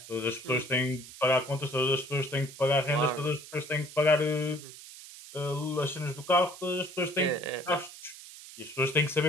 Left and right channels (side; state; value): right; noise; hiss, 16 dB below the sound